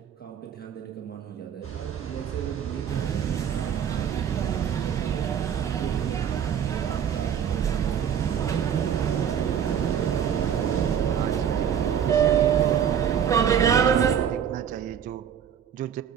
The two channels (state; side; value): quieter; left; 8.5 dB